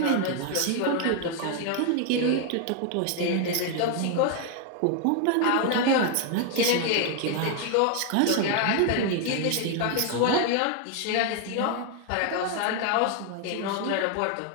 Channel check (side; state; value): both; different; correlation 0.00